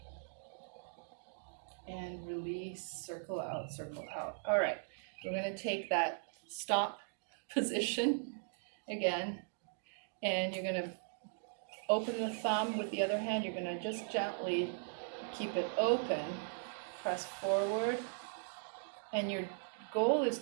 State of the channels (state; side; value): silent; left; digital silence